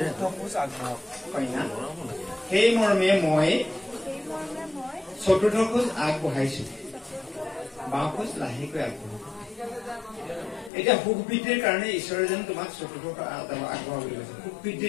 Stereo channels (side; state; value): right; drops out; at 10.7 s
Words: খোজ আগবঢ়াওক কন্যা সেই মৰ্মে মই চতুৰ্থ খোজ আগবঢ়াইছো বাওঁ খোজ লাহেকৈ আগবঢ়াব এতিয়া সুখ বৃদ্ধিৰ কাৰণে ঈশ্বৰে যেন তোমাক চতুৰ্থ আগবঢ়াব বুলি কৈছে সুখ